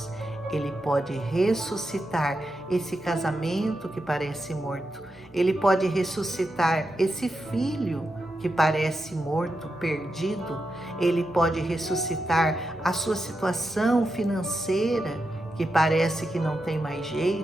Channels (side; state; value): both; normal; correlation 0.87